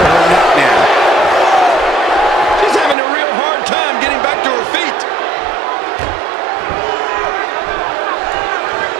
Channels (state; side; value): drops out; left; at 3.0 s